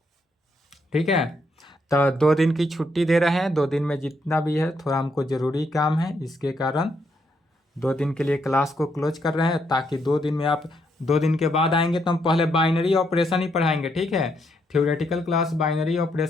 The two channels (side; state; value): both; normal; correlation 0.76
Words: ठीक है। तो 2 दिन की छुट्टी दे रहे हैं, 2 दिन में जितना भी है थोड़ा हमको ज़रूरी काम है, इसके कारण 2 दिन के लिए क्लास को क्लोज कर रहे हैं, ताकि 2 दिन में आप 2 दिन के बाद आएंगे तो हम पहले बाइनरी ऑपरेशन ही पढ़ाएंगे, ठीक है। थ्योरेटिकल क्लास बाइनरी